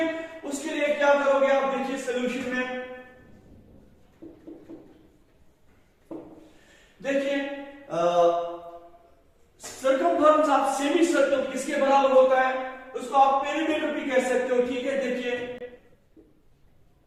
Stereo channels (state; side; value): identical; both; correlation 1.00